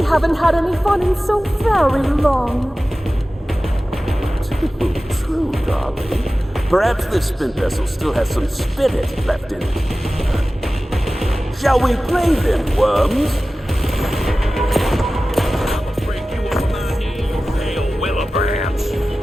haven't had any fun in so very long. True, darling. Perhaps this spin vessel still has some spirit left in it. Shall we play then, worms? Break you on my knee, you pale willow branch!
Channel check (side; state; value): both; normal; correlation 0.96